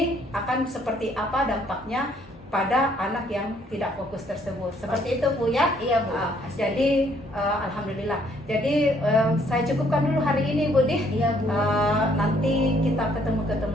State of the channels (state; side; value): normal; both; correlation 0.65